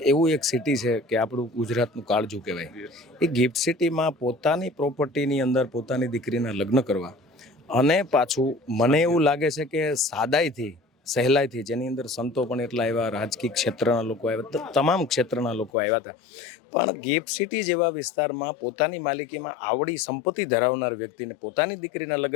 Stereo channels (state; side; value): drops out; right; at 15.7 s